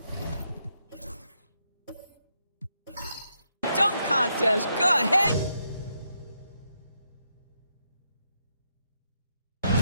dunk contest. Go ahead.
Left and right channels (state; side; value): inverted; both; correlation -0.80